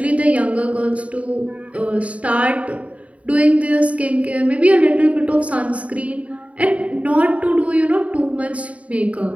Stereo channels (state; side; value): late; left; 0.066 ms